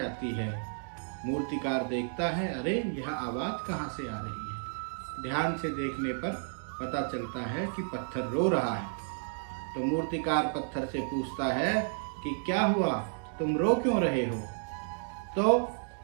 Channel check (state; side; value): silent; left; digital silence